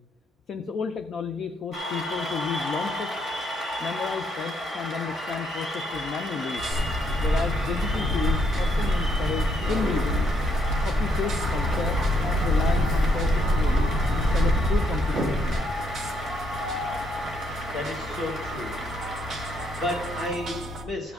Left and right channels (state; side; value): normal; both; correlation 0.73